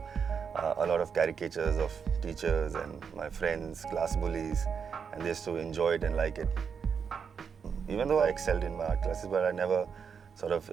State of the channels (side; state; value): left; quieter; 6.5 dB